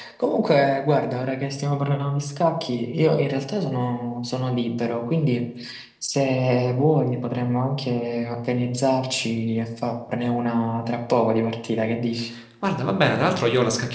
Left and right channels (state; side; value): identical; both; correlation 1.00